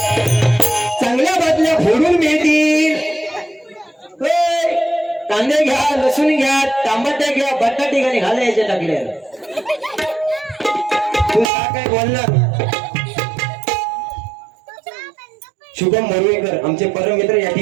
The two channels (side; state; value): left; drops out; at 11.5 s